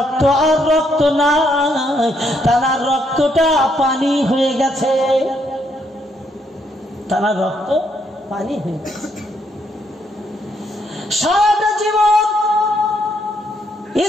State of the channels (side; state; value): both; normal; correlation 0.73